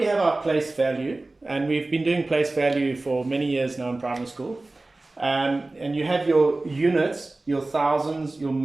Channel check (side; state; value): left; quieter; 3.0 dB